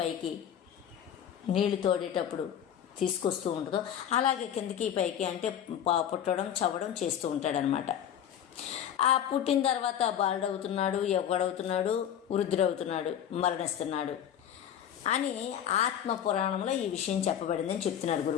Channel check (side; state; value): right; quieter; 9.7 dB